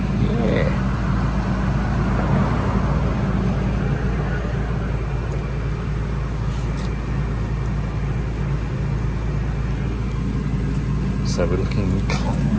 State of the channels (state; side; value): identical; both; correlation 1.00